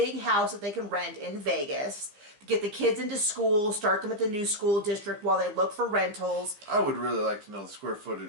house that they can rent in Vegas to get the kids into school, start them at the new school district while they look for rentals. I would really like to know the square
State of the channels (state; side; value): late; left; 15 ms